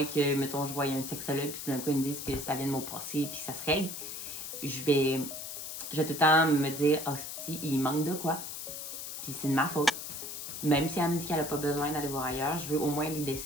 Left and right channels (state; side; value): noise; left; hiss, 7 dB below the sound